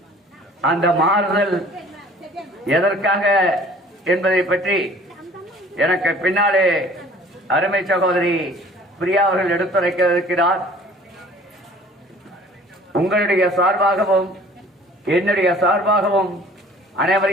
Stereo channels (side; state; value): both; normal; correlation 0.50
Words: அந்த மாறுதல் எதற்காக என்பதை பற்றி எனக்கு பின்னாலே அருமை சகோதரி பிரியா அவர்கள் எடுத்துரைக்க இருக்கிறார். உங்களுடைய சார்பாகவும் என்னுடைய சார்பாகவும்